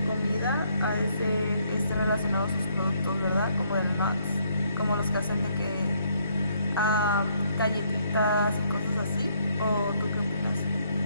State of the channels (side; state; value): both; inverted; correlation -0.69